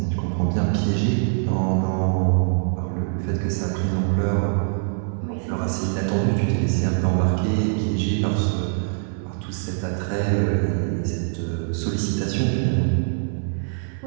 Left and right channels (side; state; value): left; silent; digital silence